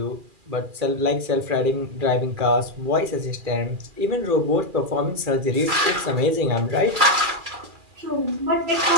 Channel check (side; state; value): left; late; 2.4 ms